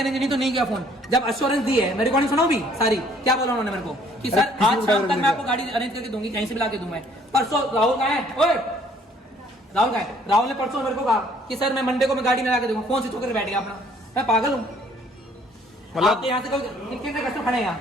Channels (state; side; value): normal; both; correlation 0.60